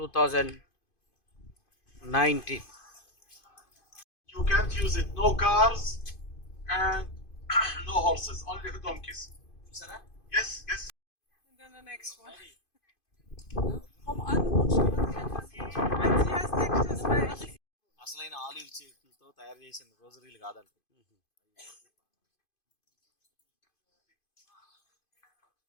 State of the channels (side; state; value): right; late; 2.5 ms